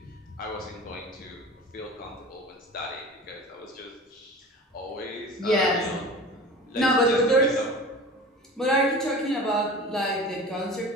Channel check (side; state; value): both; normal; correlation 0.37